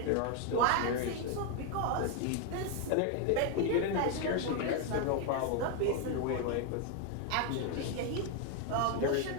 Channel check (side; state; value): both; different; correlation 0.01